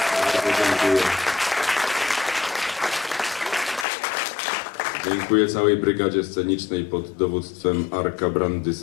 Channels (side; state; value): right; drops out; at 3.9 s